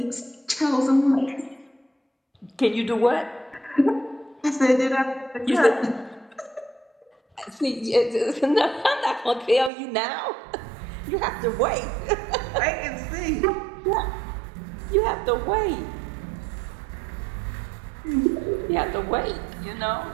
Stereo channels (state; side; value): drops out; left; at 9.7 s